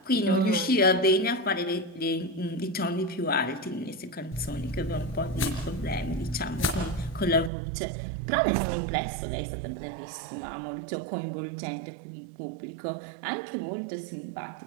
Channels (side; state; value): left; drops out; at 7.5 s